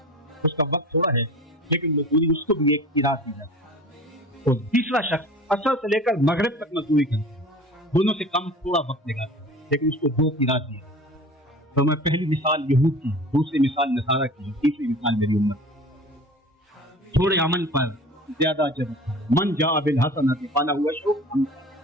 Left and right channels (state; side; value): normal; both; correlation 0.39